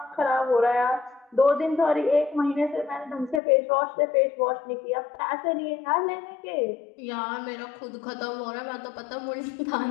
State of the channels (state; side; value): drops out; right; at 3.4 s